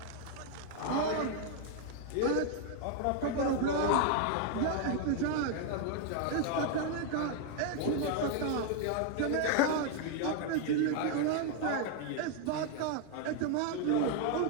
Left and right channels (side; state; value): both; different; correlation 0.00